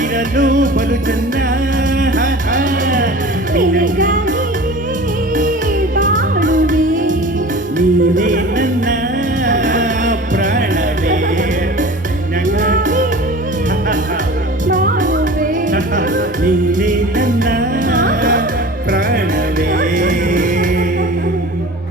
ಇರಲು ಬಲು ಚೆನ್ನ. ನಿನಗಾಗಿ ಬಾಳುವೆ, ನೀನೇ ನನ್ನ ಪ್ರಾಣವೇ. ಬಾಳುವೆ. ನೀನೇ ನನ್ನ ಪ್ರಾಣವೇ.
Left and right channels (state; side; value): normal; both; correlation 0.39